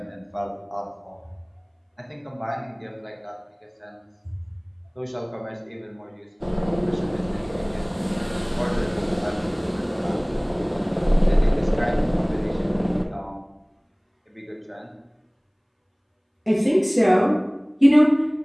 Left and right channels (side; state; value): both; identical; correlation 1.00